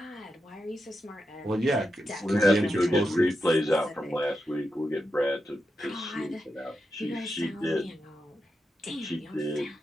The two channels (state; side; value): normal; both; correlation 0.87